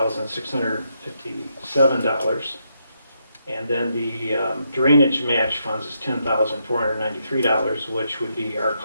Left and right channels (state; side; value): inverted; both; correlation -0.79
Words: And then the drainage match funds is $10,493, which would be our